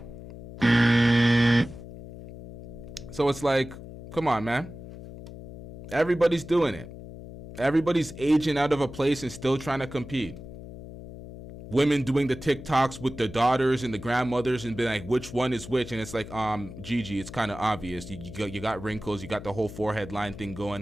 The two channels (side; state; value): left; noise; hum, 13 dB below the sound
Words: So it's like, come on, man. Everybody's doing it. Everybody's aging out of a place and still trying to compete. Women doing the TikToks with their daughters and the grandmothers and being like, which one is which? And it's like, Gigi, it's kind of obvious. You got wrinkles. You got the whole forehead line thing